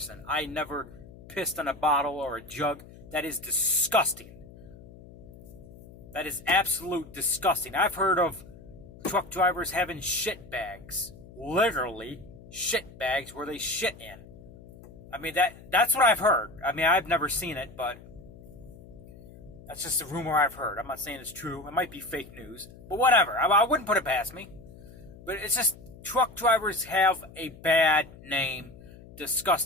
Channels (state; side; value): noise; left; hum, 19 dB below the sound